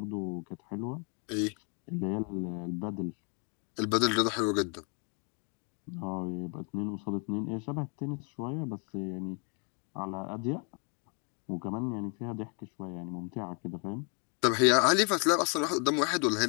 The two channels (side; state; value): right; quieter; 38.8 dB